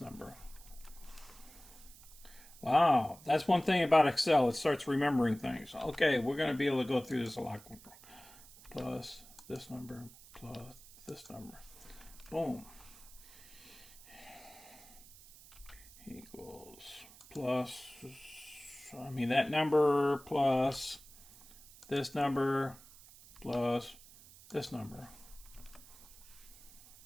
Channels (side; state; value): right; noise; hiss, 20 dB below the sound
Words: number. Wow, that's one thing about Excel. It starts remembering things. Okay, we're going to be able to go through this a lot quicker. Plus this number plus this number. Boom. Equals plus, that number plus this number plus this number